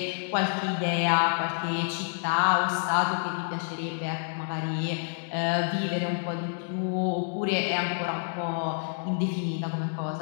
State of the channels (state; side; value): silent; right; digital silence